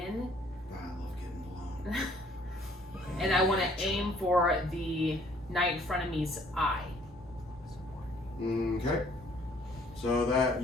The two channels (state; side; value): normal; both; correlation 0.61